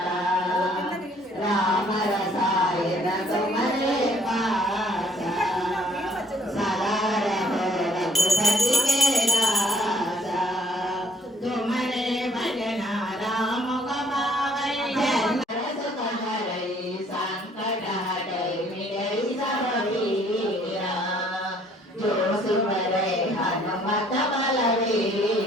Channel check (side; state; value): both; normal; correlation 0.61